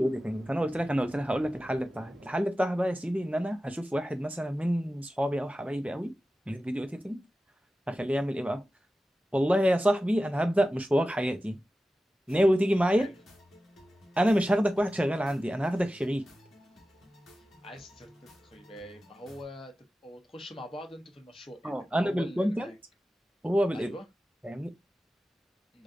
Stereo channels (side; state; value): both; normal; correlation 0.94